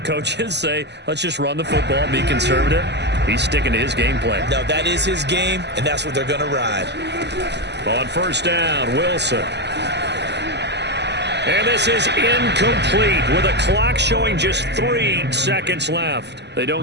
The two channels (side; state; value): left; late; 0.50 ms